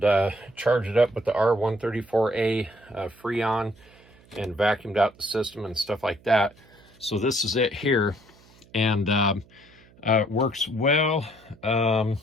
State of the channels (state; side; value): noise; right; hum, 27 dB below the sound